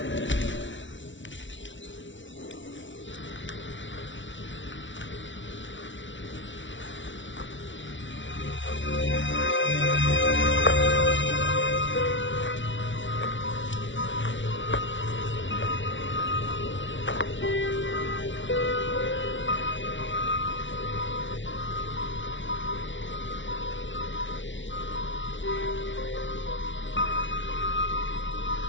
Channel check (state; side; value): late; right; 0.55 ms